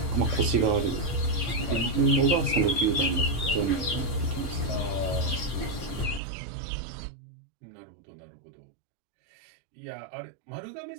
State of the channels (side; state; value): left; drops out; at 6.2 s